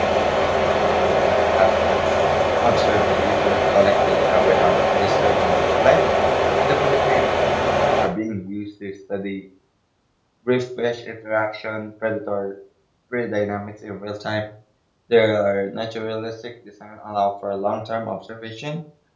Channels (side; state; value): both; identical; correlation 1.00